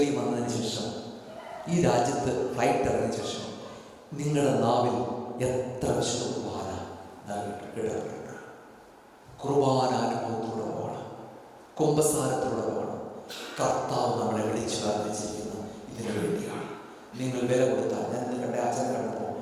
വന്നതിന് ശേഷം, ഈ രാജ്യത്ത് ഫ്ലൈറ്റ് ഇറങ്ങിയ ശേഷം നിങ്ങളുടെ നാവിൽ എത്ര വിശുദ്ധ കുർബാന കേട്ടിട്ടുണ്ട്? കുർബാന അനുഭവത്തിലൂടെ പോകണം, കുമ്പസാരത്തിലൂടെ പോകണം. കർത്താവ് നമ്മളെ വിളിച്ചു പ്രാർത്ഥിച്ചിരിക്കുന്നു ഇതിനു വേണ്ടിയാണ്. നിങ്ങൾ വില കൊടുത്താൽ, ഞാൻ നിങ്ങളുടെ അച്ഛനെ കണ്ടപ്പോൾ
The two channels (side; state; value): both; identical; correlation 1.00